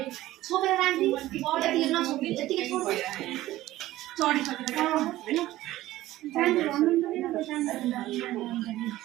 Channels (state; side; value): quieter; left; 15.7 dB